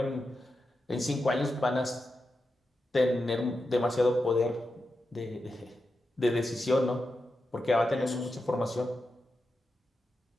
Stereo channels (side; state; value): both; normal; correlation 0.89